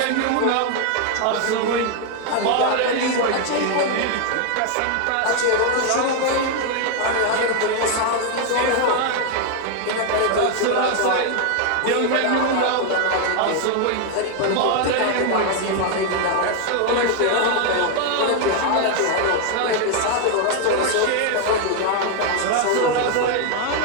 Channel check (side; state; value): both; different; correlation 0.00